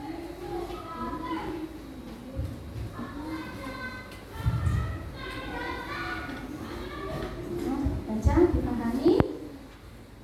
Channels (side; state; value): both; identical; correlation 1.00